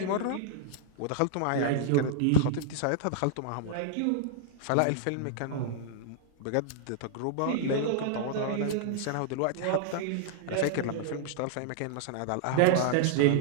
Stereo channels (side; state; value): both; different; correlation -0.01